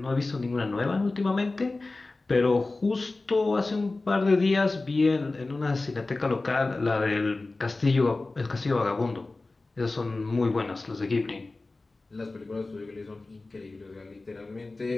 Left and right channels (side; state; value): right; quieter; 3.3 dB